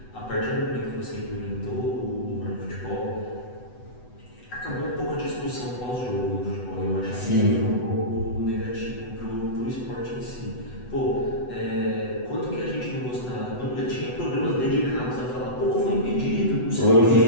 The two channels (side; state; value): right; late; 8.0 ms